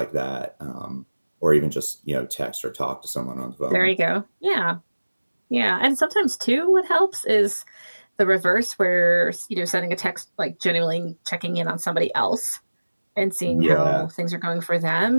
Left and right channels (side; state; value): both; inverted; correlation -1.00